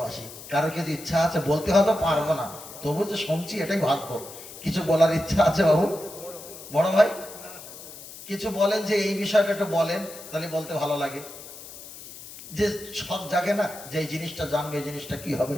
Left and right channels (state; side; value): noise; left; hiss, 15 dB below the sound